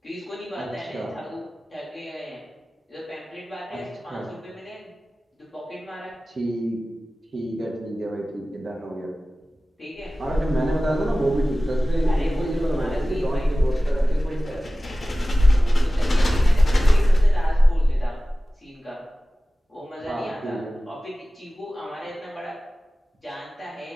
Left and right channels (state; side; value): normal; both; correlation 0.97